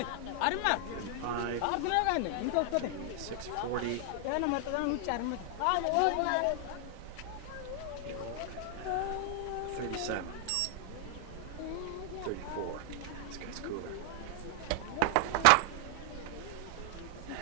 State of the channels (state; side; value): different; both; correlation 0.00